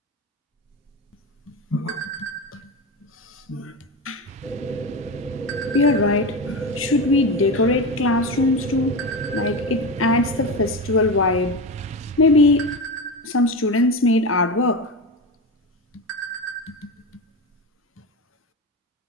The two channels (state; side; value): normal; both; correlation 0.21